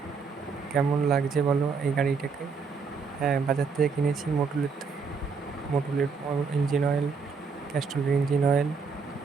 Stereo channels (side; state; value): left; quieter; 5.1 dB